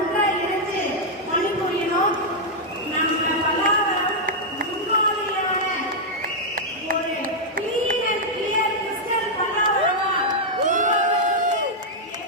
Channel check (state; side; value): normal; both; correlation -0.04